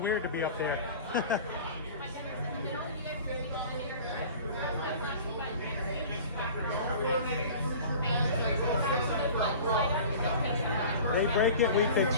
to be up there. They break it, we fix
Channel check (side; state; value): both; inverted; correlation -0.41